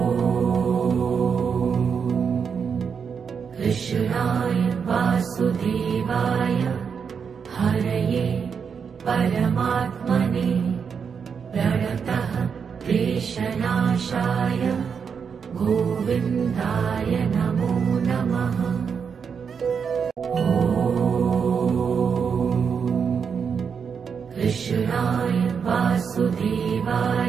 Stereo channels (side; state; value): left; quieter; 6.5 dB